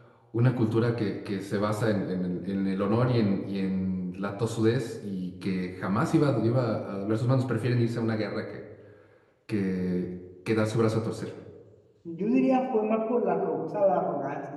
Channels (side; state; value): both; identical; correlation 1.00